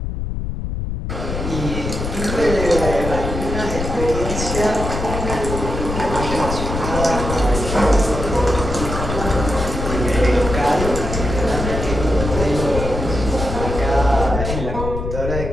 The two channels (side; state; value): left; noise; rumble, 4 dB below the sound